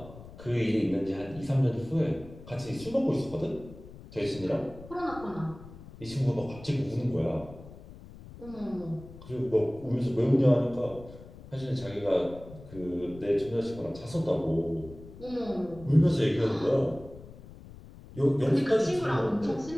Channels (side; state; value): left; noise; rumble, 17 dB below the sound